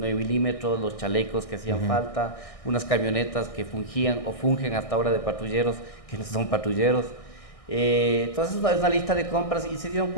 milímetros, los chalecos que hacían falta, unas camionetas que fungían o fungen hasta ahora de patrulleros, que no son patrulleros. Entonces es una lista de compras y se dieron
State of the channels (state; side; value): late; right; 1.6 ms